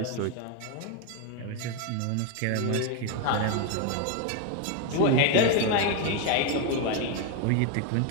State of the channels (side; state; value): both; different; correlation 0.01